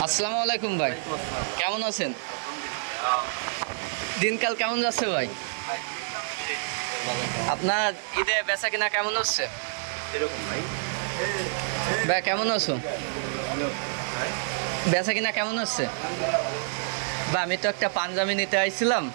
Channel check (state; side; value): silent; left; digital silence